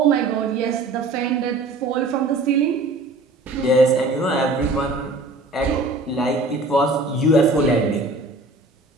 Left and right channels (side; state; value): left; quieter; 3.0 dB